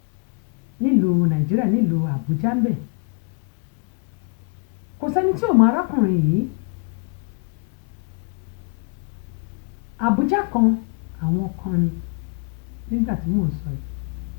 nílùú Nàìjíríà nílùú Àbújá ń bẹ̀. kò sẹ́ni tí ò mọ arákùnrin yìí. Àbújá kan àwọn kan ni nígbà tí mò ń sọ yìí.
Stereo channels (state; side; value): quieter; right; 35.9 dB